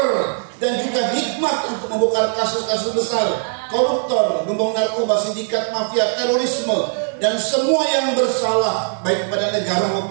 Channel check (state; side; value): silent; left; 58 dB below the other